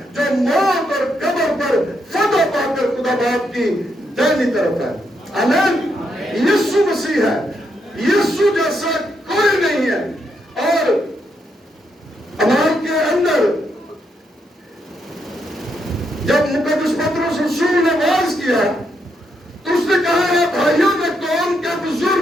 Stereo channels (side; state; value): both; normal; correlation 0.79